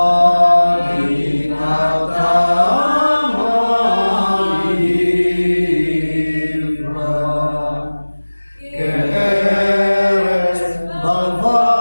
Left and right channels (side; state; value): both; inverted; correlation -1.00